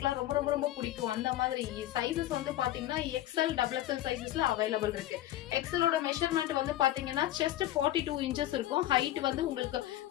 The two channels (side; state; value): right; quieter; 14.1 dB